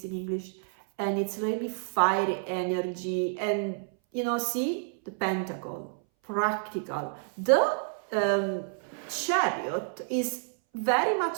in English? And it's really fiery energy. And you know, see the pentacle, practical. The chariot is very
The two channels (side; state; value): left; silent; 58 dB below the other